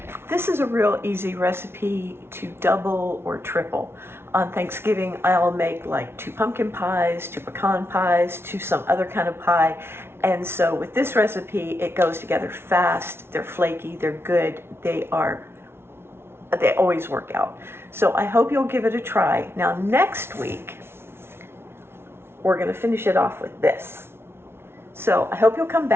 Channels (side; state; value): left; late; 0.12 ms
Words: This is a real easy recipe to double or triple. On Thanksgiving, I'll make like 2 pumpkin pies, 2 pecan pies, 2 some other kind of pie. And so with this recipe, it goes together fast, they're flaky, they're good, they always work out. So I hope you'll give it a try. Now next week, we're gonna finish it off with this. So I hope you'll come